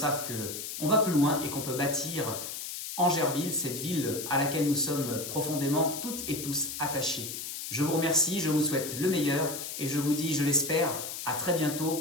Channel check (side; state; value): left; noise; hiss, 7 dB below the sound